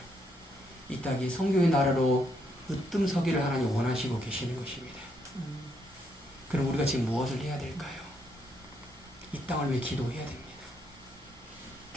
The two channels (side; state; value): both; normal; correlation 0.75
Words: 이 땅이 성경의 나라로 으뜸서기를 하나님 원하시고 계시는 것입니다. 그럼 우리가 지금 무엇을 해야 될까요? 이 땅을 위해 기도해야 됩니다.